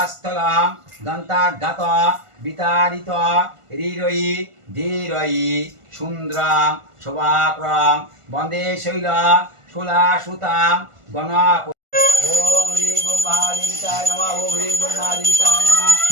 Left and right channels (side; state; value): left; late; 1.5 ms